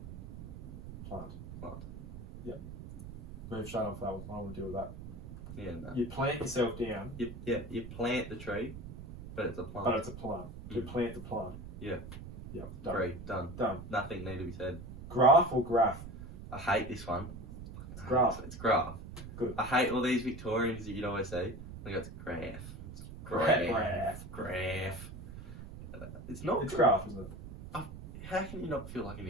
Move straight off that one. I don't want to deal with that. Yeah. No. You plant yourself down. You plant the tree, but it's a plant. But it's a plant. You plant the plant. Yeah. Yep. Done. Great. Done. Done. Nothing need to be said. Graph or graph? I hate this one. It's graph. It's graph. Good. I hate all these Victorians that you'd always say. I go, it's graph. It's graph. It's not. It's graph, isn't it? How can you not feel like an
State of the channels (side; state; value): right; noise; rumble, 11 dB below the sound